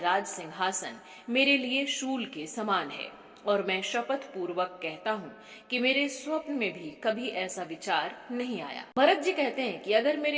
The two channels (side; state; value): both; identical; correlation 1.00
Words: सिंहासन मेरे लिए शूल के समान है और मैं शपथ पूर्वक कहता हूँ कि मेरे स्वप्न में भी कभी ऐसा विचार नहीं आया। भरत जी कहते हैं कि अगर